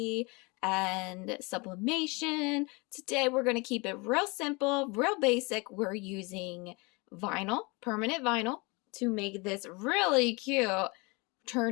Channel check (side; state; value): right; quieter; 27.6 dB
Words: and sublimation. Today we're going to keep it real simple, real basic. We're using vinyl, permanent vinyl, to make this really cute